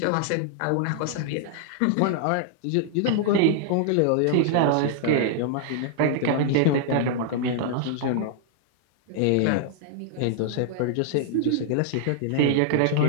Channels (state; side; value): different; both; correlation -0.01